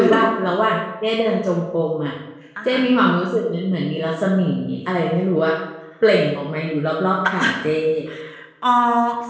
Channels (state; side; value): identical; both; correlation 1.00